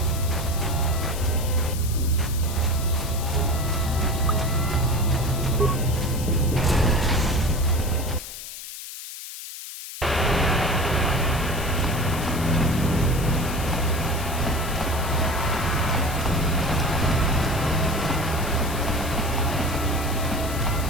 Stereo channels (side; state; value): left; noise; hiss, 11 dB below the sound